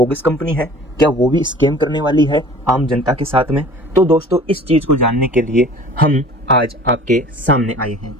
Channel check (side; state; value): both; normal; correlation 0.46